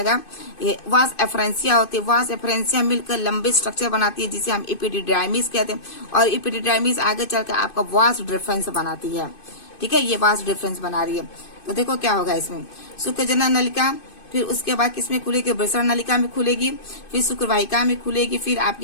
ये वास एफरेंसिया होती है, वास एफरेंसिया मिलकर लंबे स्ट्रक्चर बनाती है जिसे हम एपिडिडाइमिस कहते हैं, और एपिडिडाइमिस आगे चल के आपका वास डिफरेंस बनाती है। ठीक है, ये वास डिफरेंस बना रही है। तो देखो क्या होगा इसमें, शुक्र जनन नलिका, फिर उसके बाद किसमें खुलेगी, वृषण नलिका में खुलेगी, फिर शुक्रवाहिका में खुलेगी, फिर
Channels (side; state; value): right; late; 2.5 ms